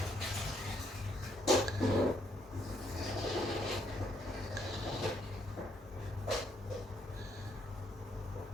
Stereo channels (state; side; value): normal; both; correlation 0.72